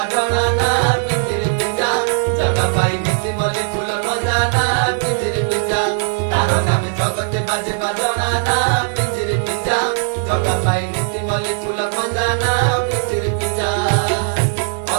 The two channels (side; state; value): left; silent; digital silence